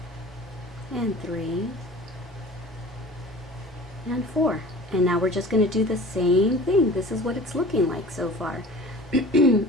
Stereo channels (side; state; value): both; normal; correlation 0.41